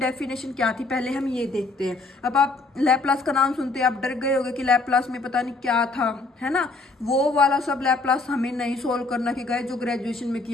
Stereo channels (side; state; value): right; quieter; 3.4 dB